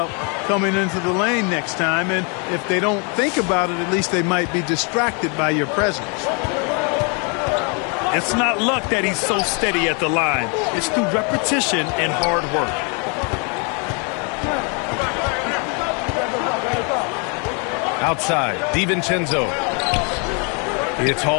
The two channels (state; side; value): quieter; right; 35.8 dB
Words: coming into the lane next time. And if they don't think about it, at least they might be distracted by your presence. It's not luck that he's so steady at the line. It's through repetition and hard work. Outside, DiVincenzo. It's